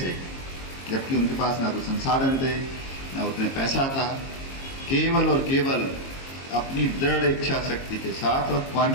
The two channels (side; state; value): right; late; 22 ms